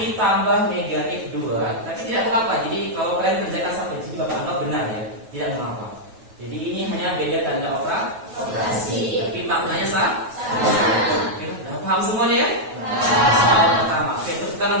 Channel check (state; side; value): late; left; 9.2 ms